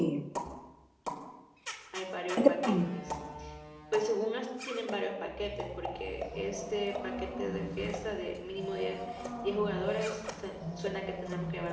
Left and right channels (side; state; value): both; identical; correlation 1.00